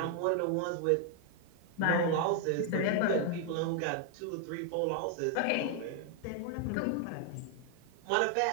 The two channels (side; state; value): both; different; correlation 0.00